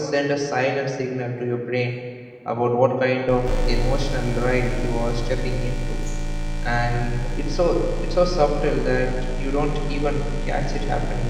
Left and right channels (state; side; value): identical; both; correlation 1.00